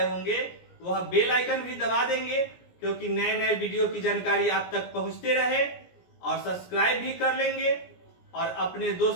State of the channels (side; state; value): right; late; 17 ms